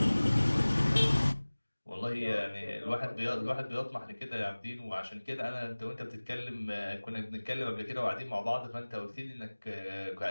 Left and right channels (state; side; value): inverted; both; correlation -1.00